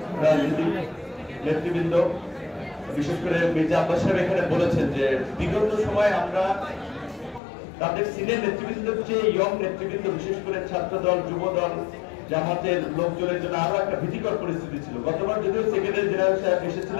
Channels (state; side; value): drops out; right; at 7.4 s